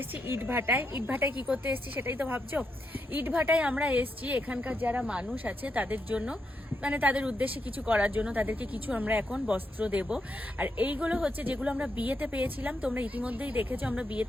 এসেছি ইট ভাটায়। ইট ভাটায় কি করতে এসেছি সেটাই তো ভাবছো। ইট ভাটায় আমরা এসেছি এখানকার যারা মানুষ আছে তাদের জন্য, মানে তাদের উদ্দেশ্যে কিছু করার জন্য, তাদেরকে কিছু আমরা এখন বস্ত্র দেব। আর এইগুলো হচ্ছে যেগুলো আমরা বিয়েতে পেয়েছিলাম, তোমরা ইতিমধ্যেই দেখেছো আমরা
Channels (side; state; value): both; normal; correlation 0.82